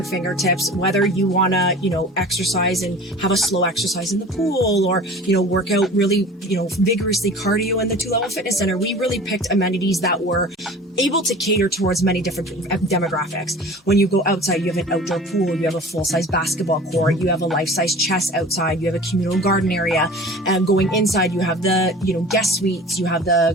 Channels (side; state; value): both; normal; correlation 0.41